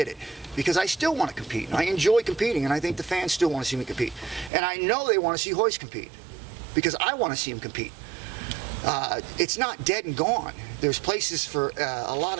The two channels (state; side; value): drops out; left; at 4.5 s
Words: it, because I still want to compete. I enjoy competing, and I think the fans still want to see me compete. And I know they want to see Royce compete, because I want to see him compete. It's not dead and gone. There's places for a lot